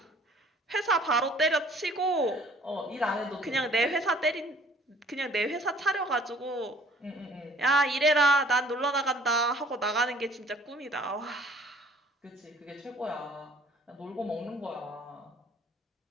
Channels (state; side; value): normal; both; correlation 0.55